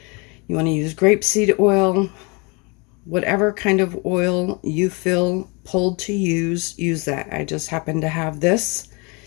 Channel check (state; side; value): quieter; right; 30.0 dB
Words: you want to use grapeseed oil, whatever kind of oil you feel pulled to use that. I just happen to have this